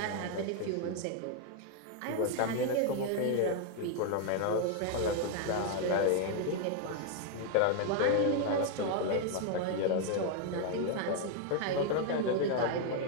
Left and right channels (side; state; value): both; different; correlation 0.00